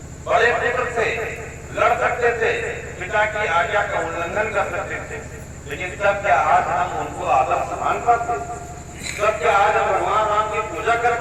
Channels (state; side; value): identical; both; correlation 1.00